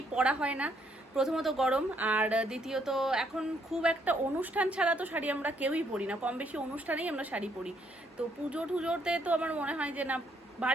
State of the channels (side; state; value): both; normal; correlation 0.71